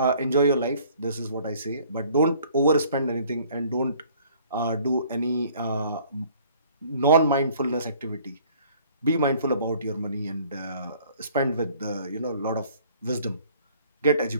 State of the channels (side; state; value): both; inverted; correlation -0.56